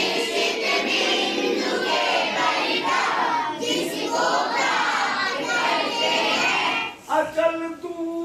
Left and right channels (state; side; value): identical; both; correlation 1.00